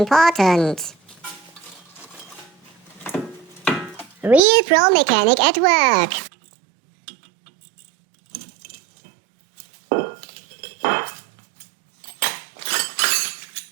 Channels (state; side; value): drops out; left; at 4.4 s